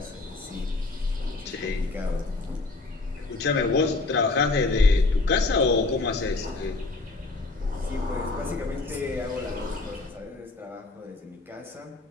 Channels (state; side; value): quieter; right; 3.4 dB